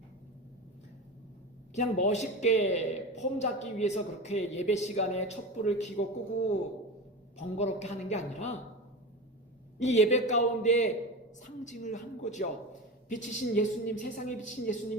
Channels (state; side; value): normal; both; correlation 0.26